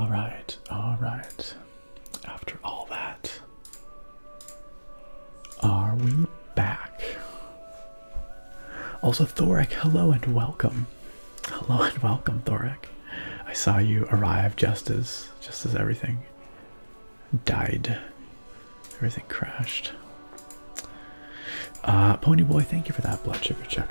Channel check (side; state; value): both; inverted; correlation -1.00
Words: alright. After all that, are we back? Also, Thoric, hello and welcome. Hello and welcome, Thoric. I saw you arrive just as everything died. Everything crashed. Ponyboy, thank you for that blood sugar